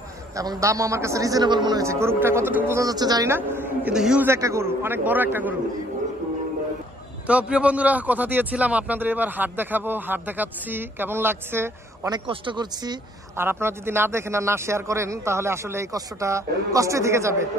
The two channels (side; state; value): both; normal; correlation 0.62